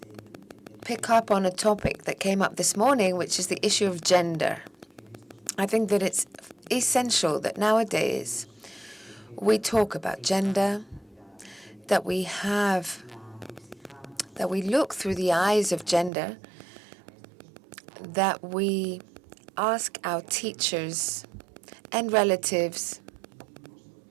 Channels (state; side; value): drops out; left; at 16.1 s